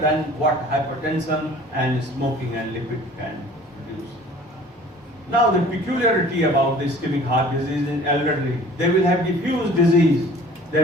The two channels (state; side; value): normal; both; correlation 0.48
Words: what hypertension and smoking and lipid can produce. Now the peculiarity about the ischemic heart disease in elderly, they will have diffuse disease, they